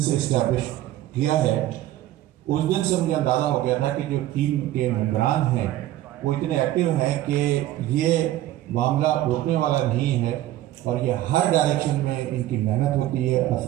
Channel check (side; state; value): left; quieter; 14.2 dB